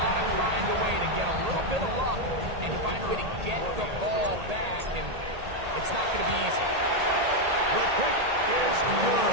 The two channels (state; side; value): late; left; 1.8 ms